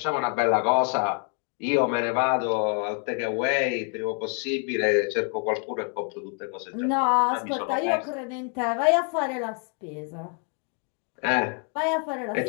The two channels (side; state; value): right; quieter; 38.8 dB